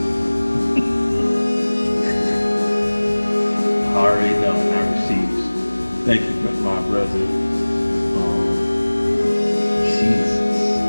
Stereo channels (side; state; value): both; inverted; correlation -1.00